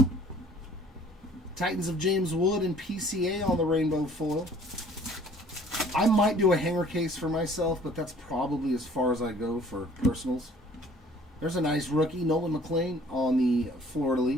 Titans of James Wood and PCA on the rainbow foil. I might do a hanger case for myself, but that's probably as far as I go for personals. There's a nice rookie, Nolan McLean on the Florida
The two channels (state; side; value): normal; both; correlation 0.54